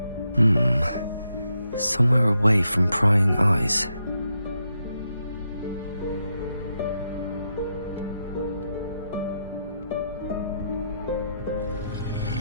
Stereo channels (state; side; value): inverted; both; correlation -0.82